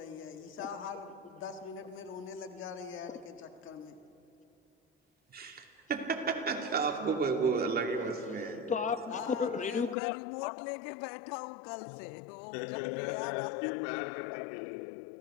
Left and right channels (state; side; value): drops out; right; at 10.0 s